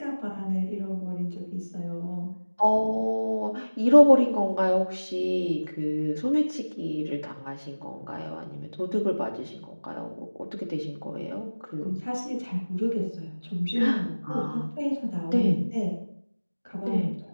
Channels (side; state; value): both; inverted; correlation -1.00